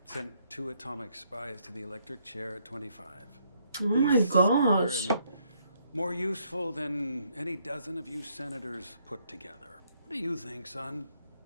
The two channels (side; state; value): both; inverted; correlation -0.71